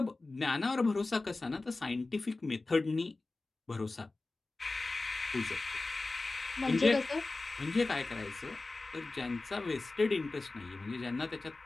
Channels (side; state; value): right; quieter; 3.3 dB